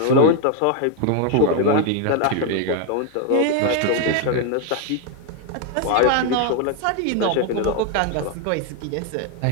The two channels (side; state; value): both; different; correlation 0.01